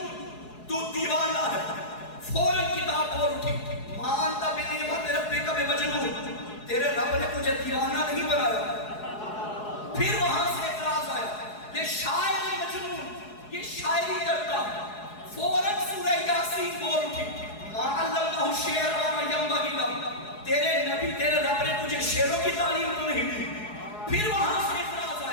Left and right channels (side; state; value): right; late; 4.7 ms